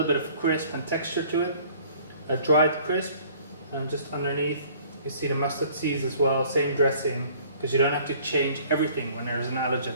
bit of crisp and texture to it. A dried crisp, and just underneath you see the mustard seeds as well, same dressing, because you don't have to change everything when there's an allergen.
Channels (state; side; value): inverted; both; correlation -0.54